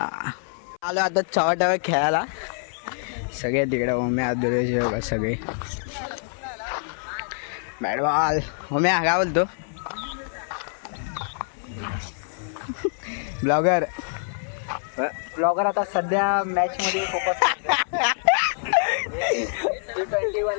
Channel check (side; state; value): right; silent; 62 dB below the other